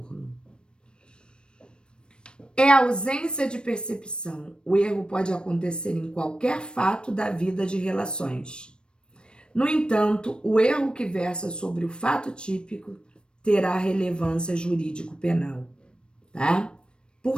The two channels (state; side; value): late; right; 0.054 ms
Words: É a ausência de percepção. O erro pode acontecer em qualquer fato da vida de relações. No entanto, o erro que versa sobre o fato típico terá relevância jurídico-penal, tá?